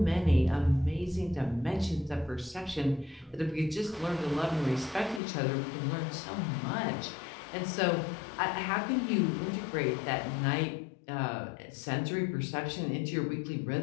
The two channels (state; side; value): drops out; right; at 5.2 s